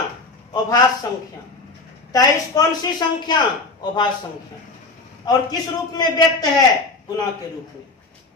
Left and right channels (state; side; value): quieter; right; 3.5 dB